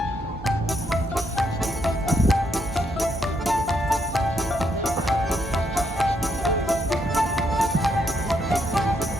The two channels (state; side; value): normal; both; correlation 0.75